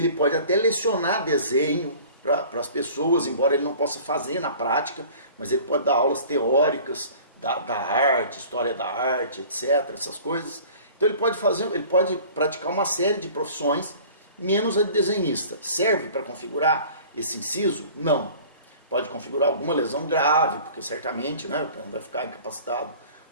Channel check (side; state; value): both; inverted; correlation -0.46